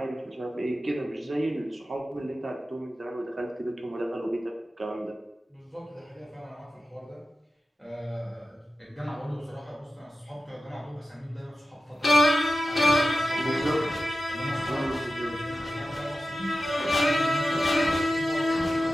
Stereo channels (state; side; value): normal; both; correlation 0.94